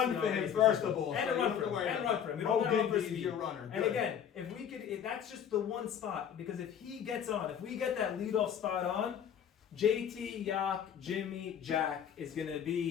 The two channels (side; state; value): right; quieter; 8.7 dB